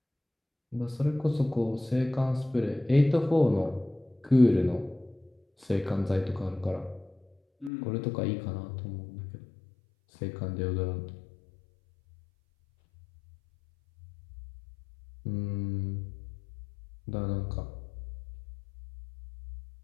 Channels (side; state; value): right; drops out; at 7.7 s